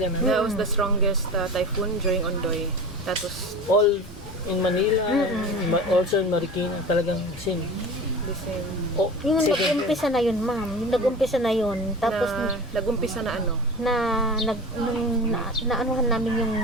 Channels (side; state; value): both; normal; correlation 0.34